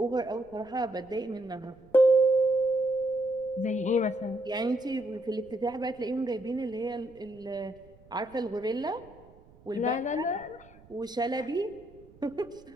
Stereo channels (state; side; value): noise; right; rumble, 26 dB below the sound